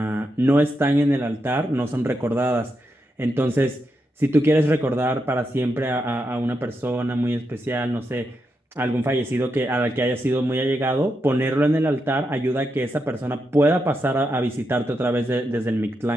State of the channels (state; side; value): normal; both; correlation 0.84